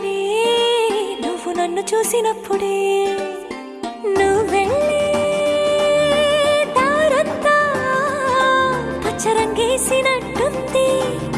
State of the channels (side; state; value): both; identical; correlation 1.00